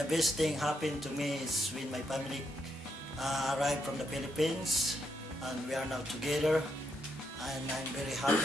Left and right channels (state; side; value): normal; both; correlation 0.78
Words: best thing happened to me is when my family arrived from the Philippines, and we are now together. And I'm very